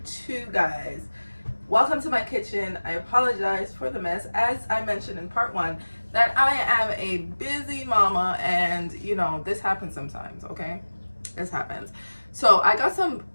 2, guys. Welcome to my kitchen. I apologize for the mess. As I mentioned in part 1, that I am a busy mama, and this happens sometimes, okay? This happens. So I got some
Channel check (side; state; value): both; inverted; correlation -1.00